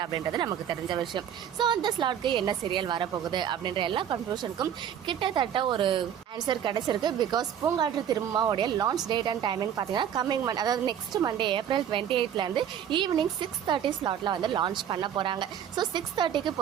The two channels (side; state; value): left; quieter; 9.4 dB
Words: அப்படின்றது நமக்கு தெரிஞ்ச விஷயம். ஸோ அந்த ஸ்லாட்க்கு என்ன சீரியல் வரப்போகுது அப்படின்ற எல்லா கன்ஃபியூஷனுக்கும் கிட்டத்தட்ட ஒரு ஆன்சர் கிடைச்சிருக்கு. Because Poongatru திரும்பமாவுடைய launch date and timing பார்த்தீங்கன்னா கம்மிங் மந்த், அதாவது நெக்ஸ்ட் மண்டே April 28 ஈவினிங் 6:30 ஸ்லாட்ல வந்து லான்ச் பண்ண போறாங்க. ஸோ 6:30க்கு